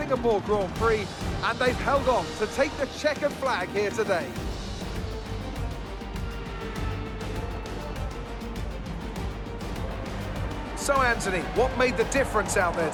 Grand Prix, and they've held on to take the checkered flag here today. So Anthony, what made the difference out there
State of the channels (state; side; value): identical; both; correlation 1.00